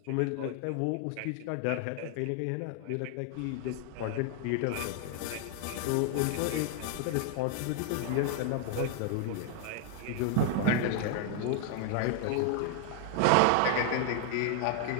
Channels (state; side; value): different; both; correlation 0.00